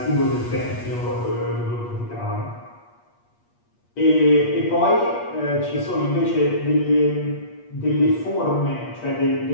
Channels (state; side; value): late; right; 8.4 ms